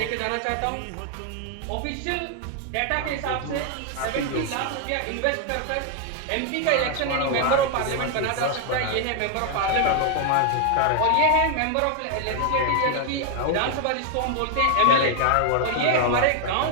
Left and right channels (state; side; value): different; both; correlation 0.00